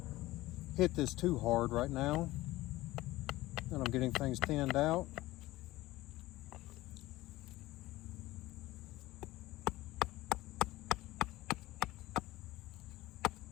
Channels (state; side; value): quieter; right; 17.7 dB